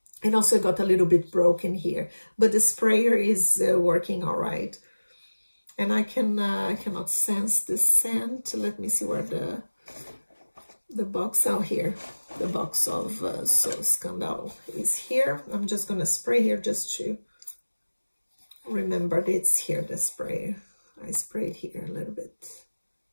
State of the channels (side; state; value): both; inverted; correlation -1.00